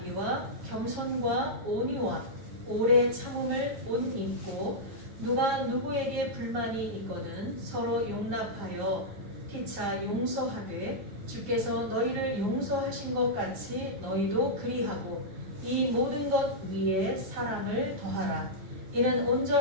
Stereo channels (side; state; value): left; late; 9.6 ms